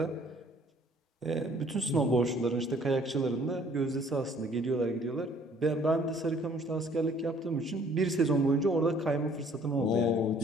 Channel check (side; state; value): both; normal; correlation 0.58